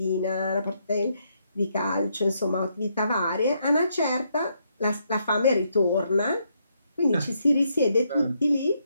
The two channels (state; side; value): inverted; both; correlation -0.76